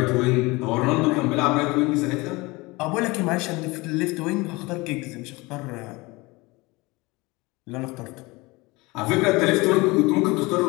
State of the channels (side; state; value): right; quieter; 23.5 dB